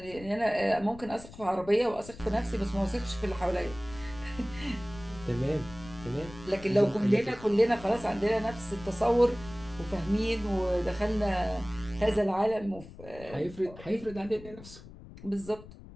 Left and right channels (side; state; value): left; noise; rumble, 17 dB below the sound